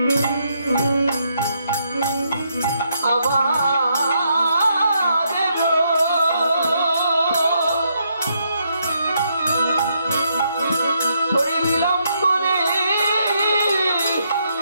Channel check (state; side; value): inverted; both; correlation -0.76